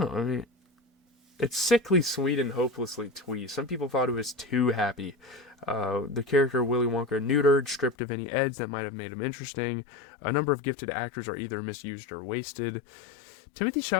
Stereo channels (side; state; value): right; drops out; at 8.0 s